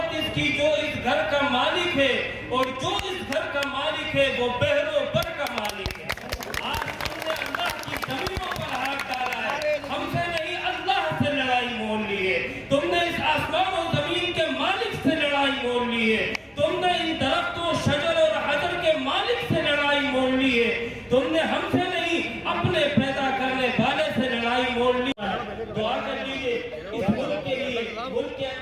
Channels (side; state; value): both; identical; correlation 1.00